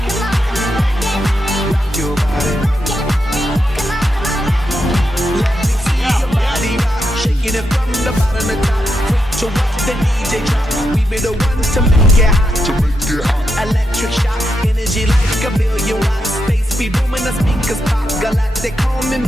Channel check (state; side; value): normal; both; correlation 0.84